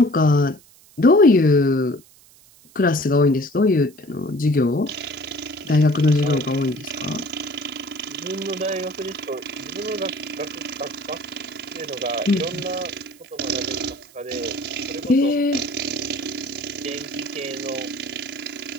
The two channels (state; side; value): noise; right; hiss, 26 dB below the sound